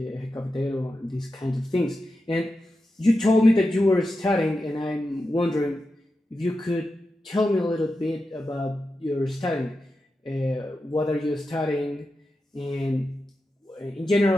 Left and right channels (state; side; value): normal; both; correlation 0.90